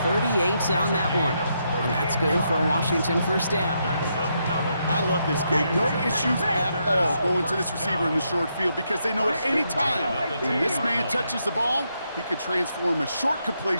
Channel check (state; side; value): inverted; both; correlation -0.79